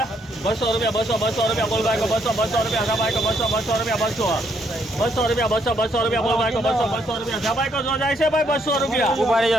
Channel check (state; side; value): normal; both; correlation 0.72